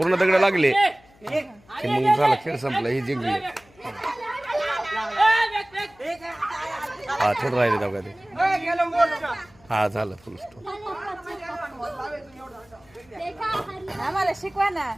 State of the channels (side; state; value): left; noise; hum, 28 dB below the sound